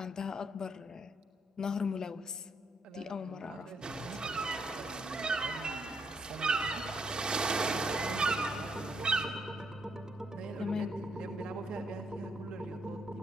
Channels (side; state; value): both; normal; correlation 0.74